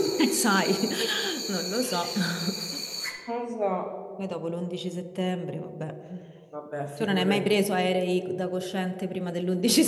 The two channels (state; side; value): identical; both; correlation 1.00